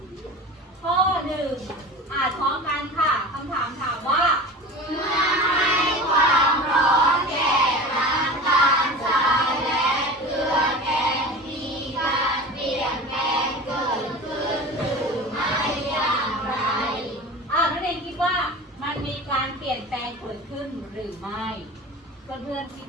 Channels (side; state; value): both; normal; correlation 0.35